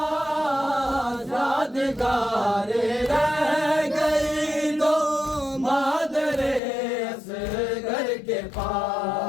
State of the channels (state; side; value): drops out; right; at 6.6 s